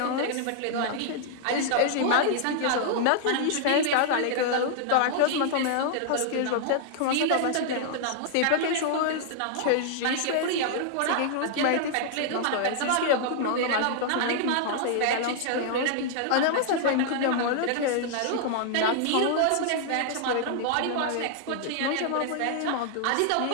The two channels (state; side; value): different; both; correlation -0.01